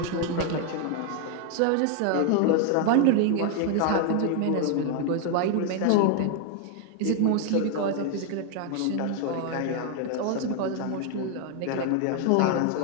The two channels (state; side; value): different; both; correlation 0.00